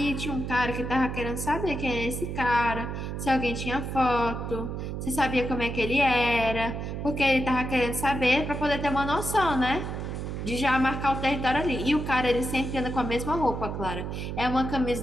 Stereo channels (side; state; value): right; noise; hum, 5 dB below the sound